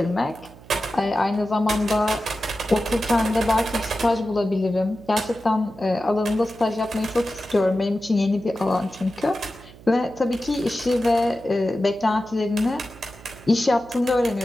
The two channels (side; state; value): right; noise; hum, 21 dB below the sound